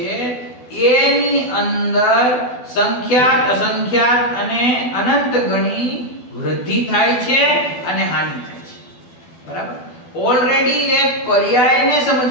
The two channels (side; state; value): right; late; 12 ms